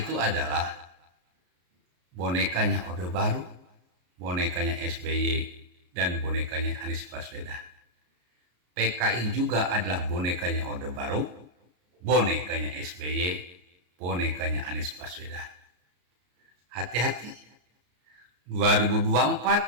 adalah bonekanya Orde Baru, bonekanya SBY, dan bonekanya Anies Baswedan. PKI juga adalah bonekanya Orde Baru, bonekanya SBY, bonekanya Anies Baswedan. Hati-hati,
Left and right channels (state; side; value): late; left; 33 ms